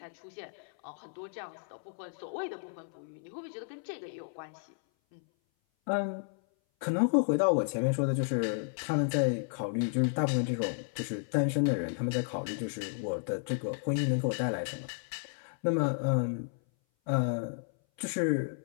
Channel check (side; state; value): right; silent; 56 dB below the other